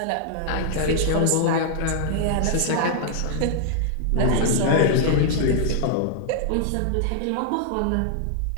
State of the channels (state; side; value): different; both; correlation -0.01